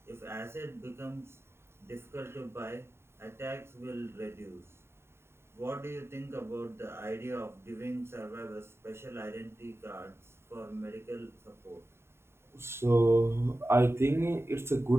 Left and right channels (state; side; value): late; left; 0.12 ms